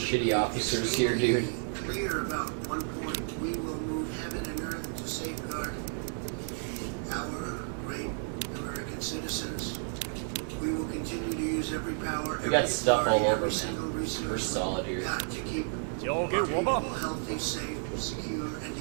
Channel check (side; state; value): left; silent; 57 dB below the other